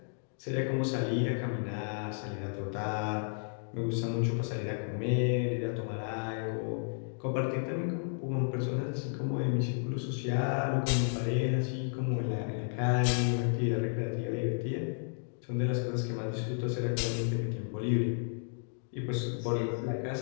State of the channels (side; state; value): right; silent; digital silence